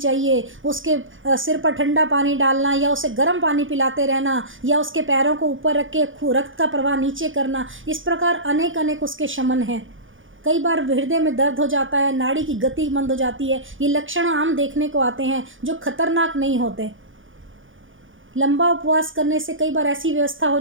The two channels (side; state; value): left; late; 0.57 ms